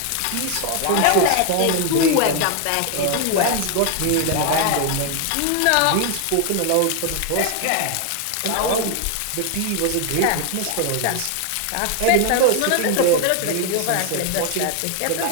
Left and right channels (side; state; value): both; different; correlation 0.00